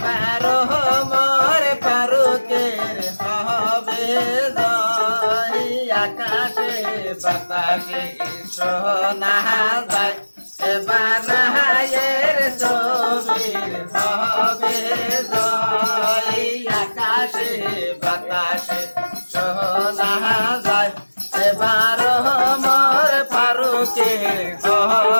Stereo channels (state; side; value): inverted; both; correlation -1.00